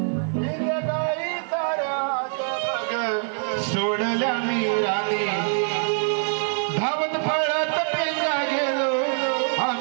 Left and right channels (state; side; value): silent; left; digital silence